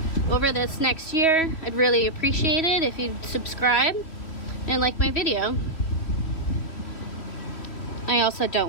over this next year, I'd really appreciate it if you'd subscribe and like my video. I also don't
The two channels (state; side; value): late; right; 2.9 ms